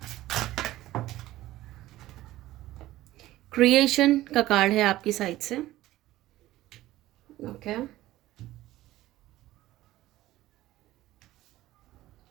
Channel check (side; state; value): left; quieter; 15.8 dB